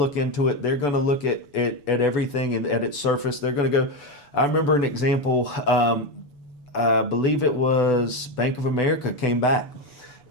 into it. They're going to look at everything and at its surface. They're going to go. I remember an example. I believe it was Bank of America came back.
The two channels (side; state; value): right; late; 6.9 ms